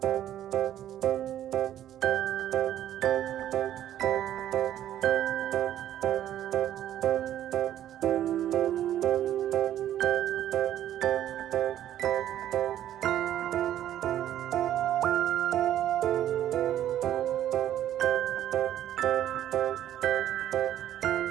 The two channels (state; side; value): quieter; left; 11.7 dB